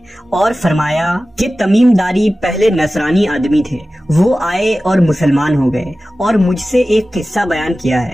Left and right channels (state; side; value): normal; both; correlation 0.96